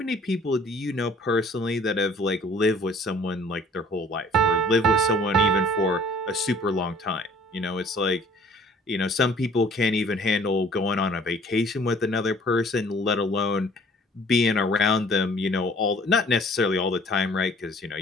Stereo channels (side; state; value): both; normal; correlation 0.54